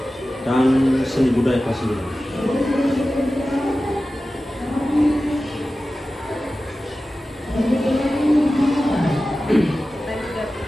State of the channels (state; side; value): normal; both; correlation 0.95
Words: dan Seni Budaya kelas 9.